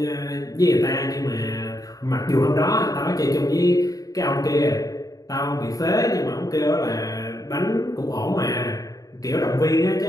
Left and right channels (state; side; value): late; right; 0.17 ms